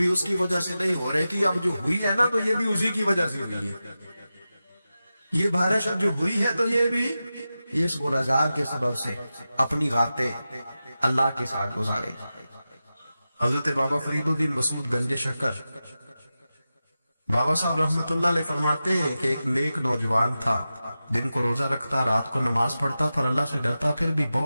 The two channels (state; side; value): inverted; both; correlation -0.93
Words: اس کی وجہ سے نہیں ہو رہی تھی، اب جو ہوئی ہے نا تو یہ بھی اسی کی وجہ سے ہوئی ہے، یہ بارش اب جو ہوئی ہے تو یہ بھی اس گناہگار کے سبب سے اپنی راتیں اللہ کے ساتھ گزارے۔ حضرت بابا فرید الدین مسعود گنج شکر بابا صاحب رحمۃ اللہ علیہ فرماتے ہیں کہ ایک نیک نوجوان تھا، دن کو روزہ رکھتا، رات کو نماز پڑھتا، پر اللہ سے ڈرتا پھر بھی